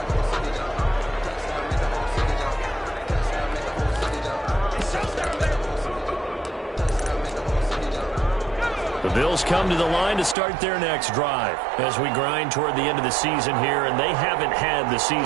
The Bills come to the line to start their next drive as we grind toward the end of the season here, and they haven't had the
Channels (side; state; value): left; drops out; at 10.4 s